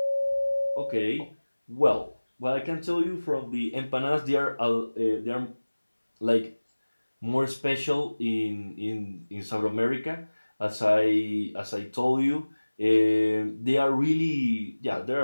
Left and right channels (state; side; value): inverted; both; correlation -1.00